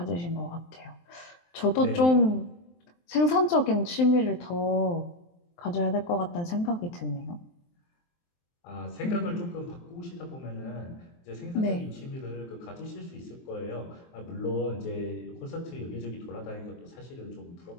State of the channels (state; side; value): late; right; 23 ms